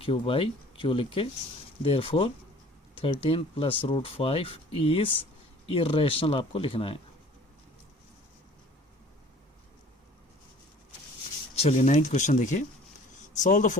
by Q लिख के देयरफॉर 13 प्लस √5 इज इरेशनल आपको लिखना है। चलिए 9th क्वेश्चन देखिए। Solve the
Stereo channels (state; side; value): normal; both; correlation 0.50